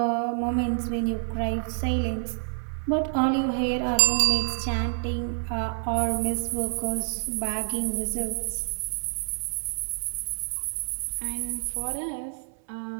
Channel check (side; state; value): left; silent; 58 dB below the other